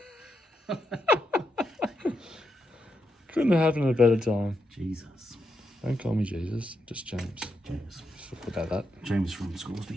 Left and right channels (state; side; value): normal; both; correlation 0.83